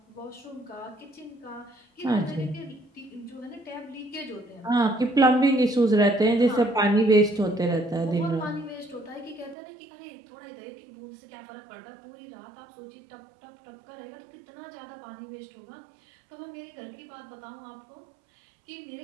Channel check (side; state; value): left; drops out; at 9.6 s